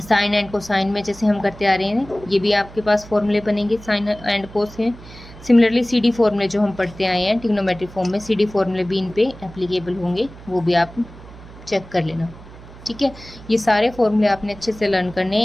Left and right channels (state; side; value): noise; right; hum, 18 dB below the sound